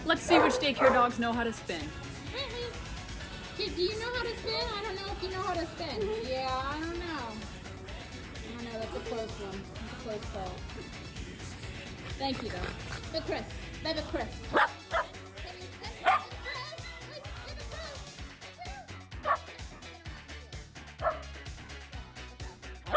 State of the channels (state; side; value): identical; both; correlation 1.00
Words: Let's see which daycare dogs know how to spin. Kid, do you know how to spin? I don't know if you know how to spin. Yeah, I don't know. I don't know. That's a close one. That's a close call. Thank you, though. But Chris. Baby Chris.